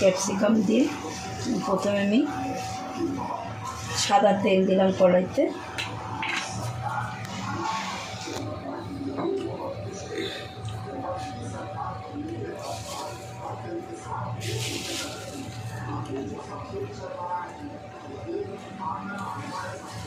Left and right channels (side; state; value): both; identical; correlation 1.00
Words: ক্যাপসিকাম দিয়ে। প্রথমে আমি সাদা তেল দিলাম কড়াইতে,